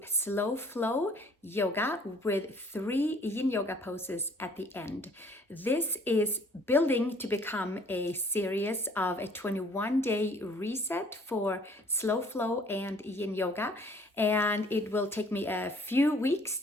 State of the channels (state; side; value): normal; both; correlation 0.56